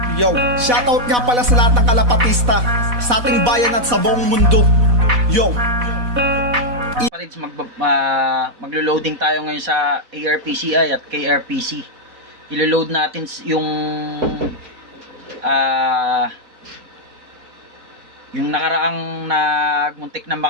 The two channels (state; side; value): late; left; 4.1 ms